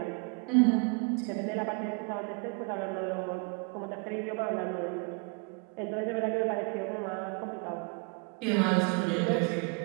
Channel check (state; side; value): quieter; left; 34.0 dB